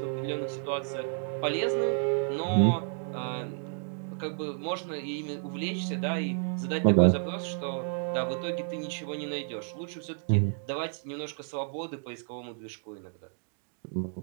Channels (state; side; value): silent; left; 57 dB below the other